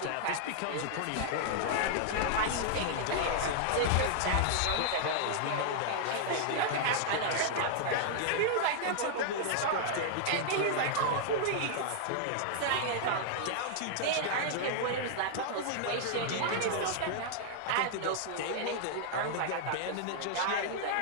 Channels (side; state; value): both; different; correlation -0.01